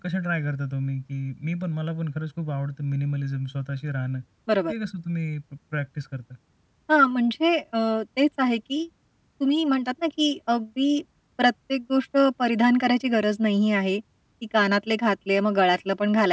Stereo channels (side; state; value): both; identical; correlation 1.00